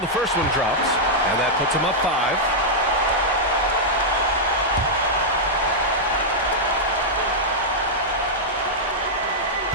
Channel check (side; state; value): both; normal; correlation -0.07